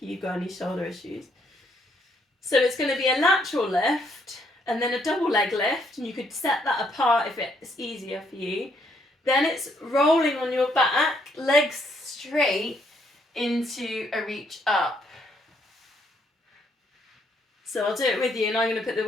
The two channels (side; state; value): both; normal; correlation 0.71